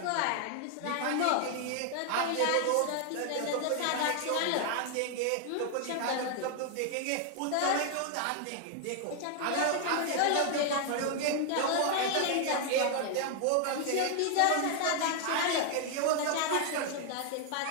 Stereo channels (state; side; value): different; both; correlation 0.00